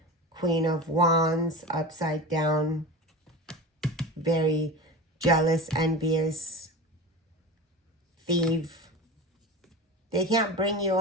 Queen of Wands, upside down, very jealous, envious, thief. They can't bring you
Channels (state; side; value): normal; both; correlation 0.30